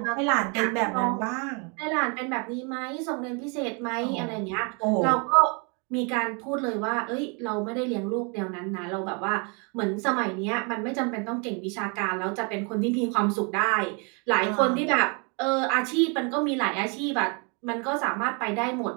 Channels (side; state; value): left; quieter; 34.2 dB